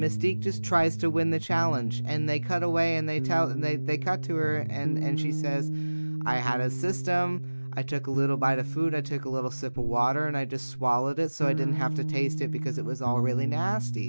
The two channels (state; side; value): inverted; both; correlation -1.00